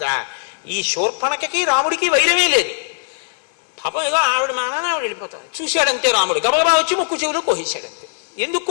ఈ శూర్పణఖకి రాముడికి వైరమే లేదు. పాపం ఏదో ఆవిడ మానాన్ని ఆవిడ వెళ్ళిపోతాడు. చూశాడంతే రాముడు, గబగబా వచ్చి ముక్కు చెవులో కోసేశాడంతే. ఎందుకు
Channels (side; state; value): right; silent; 61 dB below the other